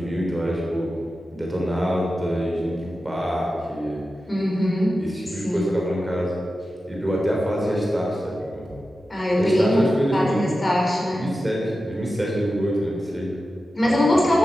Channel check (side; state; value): both; normal; correlation 0.92